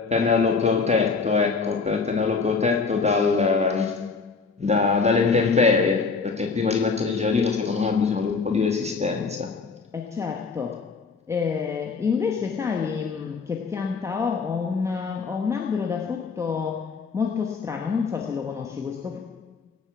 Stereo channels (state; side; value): quieter; right; 4.8 dB